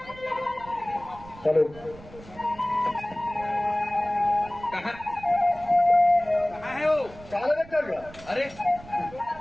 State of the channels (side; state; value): right; noise; rumble, 19 dB below the sound